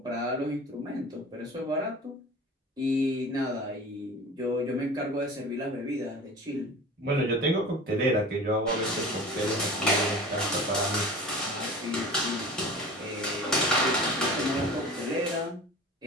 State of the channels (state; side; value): normal; both; correlation 0.37